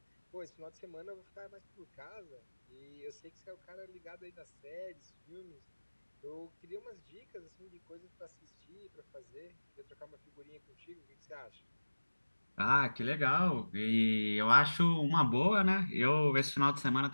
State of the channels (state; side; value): inverted; both; correlation -1.00